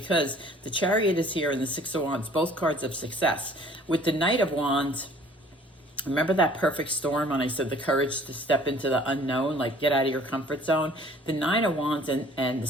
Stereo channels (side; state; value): both; normal; correlation 0.53